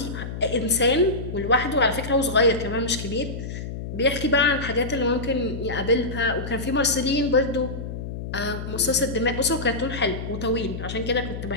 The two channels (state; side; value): noise; left; hum, 7 dB below the sound